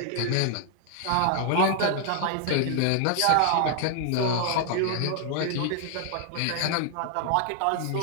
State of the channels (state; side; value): different; both; correlation 0.00